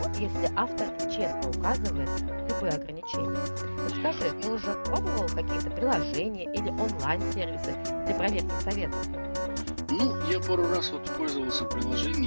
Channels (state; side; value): inverted; both; correlation -1.00